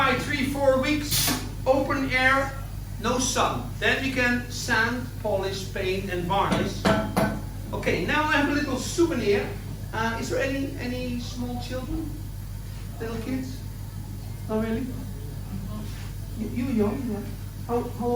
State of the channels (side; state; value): both; identical; correlation 1.00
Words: 3-4 weeks, open air, no sun. Then we can sand, polish, paint and varnish. Okay, now I have a little souvenir. Is there any small children? Little kids? Oh really? You young? Yeah. How